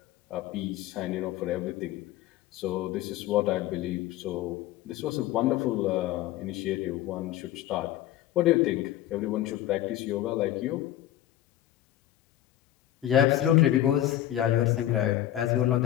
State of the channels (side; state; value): right; quieter; 13.2 dB